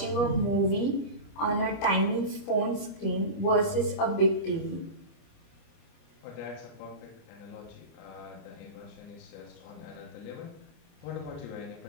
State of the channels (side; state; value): right; late; 25 ms